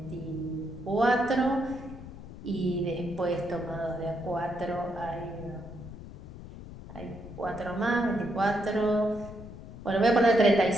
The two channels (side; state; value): left; noise; rumble, 13 dB below the sound